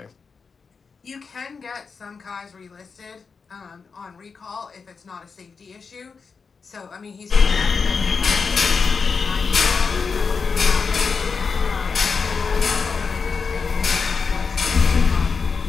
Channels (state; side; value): quieter; right; 5.2 dB